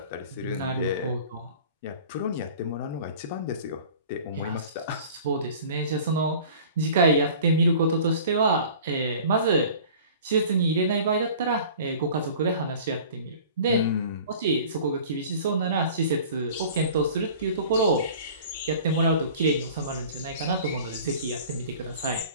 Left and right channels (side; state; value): both; inverted; correlation -0.44